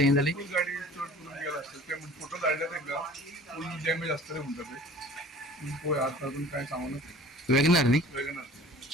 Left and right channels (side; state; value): both; normal; correlation 0.47